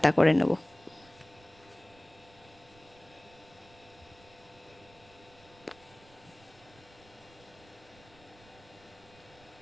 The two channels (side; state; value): right; noise; rumble, 25 dB below the sound